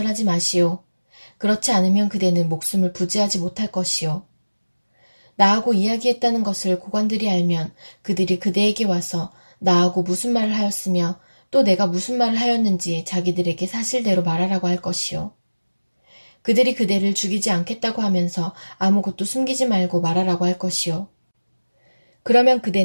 마시오. 그렇지 않으면 그대는 목숨을 부지하지 못할 것이오. 나하고 이야기했다는 것을 고관들이 알면 그들이 그대에게 와서 나하고 무슨 말을 하였으며 또 내가 무슨 말을 하였는지 자기들에게 사실대로 말하라고 할 것이오. 그들이 그대를 죽이지 않겠다고 하면서 아무것도 숨기지 말고 말하라고 할 것이오. 그러면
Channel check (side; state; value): both; inverted; correlation -1.00